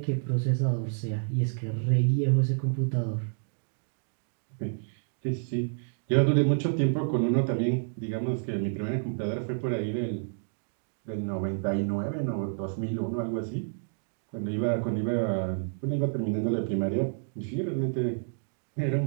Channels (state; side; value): silent; left; digital silence